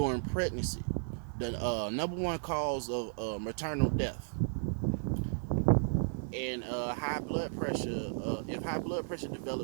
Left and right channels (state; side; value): silent; left; digital silence